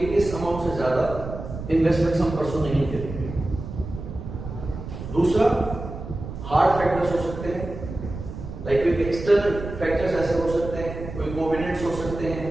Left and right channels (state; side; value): noise; right; rumble, 9 dB below the sound